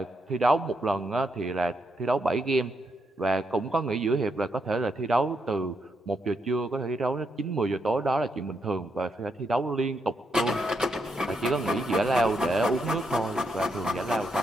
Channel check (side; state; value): both; normal; correlation 0.80